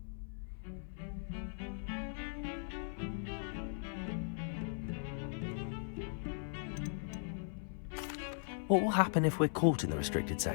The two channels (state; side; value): silent; right; 52 dB below the other